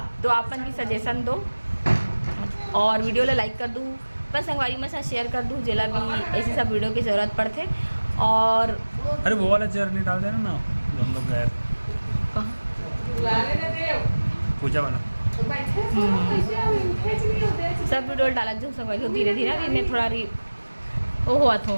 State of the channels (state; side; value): inverted; both; correlation -1.00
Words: तो आपन भी सजेशन दो और वीडियो ला लाइक कर दूँ, बस संगवारी में साथ शेयर कर दूँ, जेला भी ऐसी सब वीडियो की ज़रूरत पड़ते। और अरे वो वाला चेयर नहीं डाल देना ना, हम लोग गए पूजा वाला सब वीडियो डाला जो संगवारी हो। धीरे धीरे अभी मैं थोड़ा वो हुआ था,